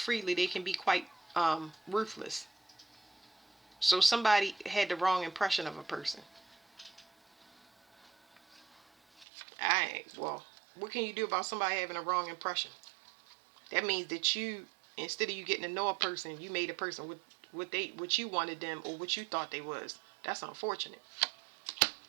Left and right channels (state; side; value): drops out; left; at 9.2 s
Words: they can be quite ruthless. So somebody had the wrong impression of a person. Well, what can you do about somebody having a wrong impression? That means that you, instead of you getting to know a person, you made a person with what you wanted them, or what you thought they was. That's unfortunate.